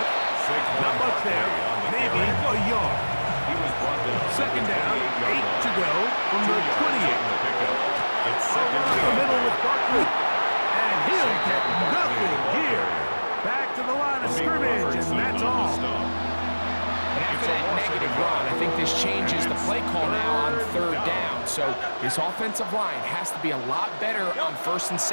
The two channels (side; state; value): both; inverted; correlation -1.00